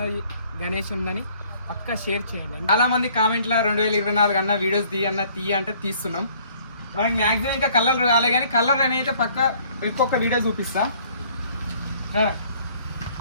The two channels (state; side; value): inverted; both; correlation -0.59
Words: గణేష్ ఉందని పక్కా షేర్ చేయండి. చాలా మంది కామెంట్లో 2024 అన్న వీడియోస్ తీయ అంటే తీస్తున్నాం. మనకి మ్యాక్సిమం ఇంకా కలర్ రాలే కానీ కలర్ అనేది పక్క ఇంకొక వీడియో చూపిస్తా.